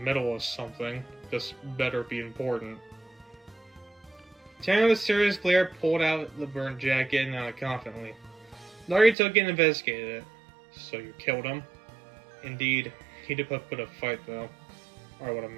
of something. This better be important. Tanner with a serious glare pulled out the burnt jacket and nodded confidently. Darky took it and investigated it. So you killed him? Indeed. He did put a fight though. Or I would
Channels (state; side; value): drops out; left; at 9.2 s